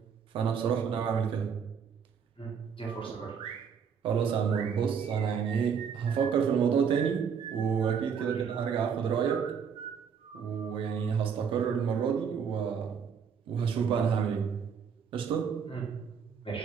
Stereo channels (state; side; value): quieter; left; 6.8 dB